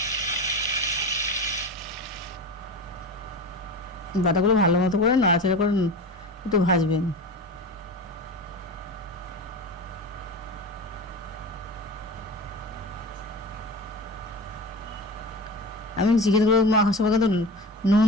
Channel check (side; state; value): both; normal; correlation 0.30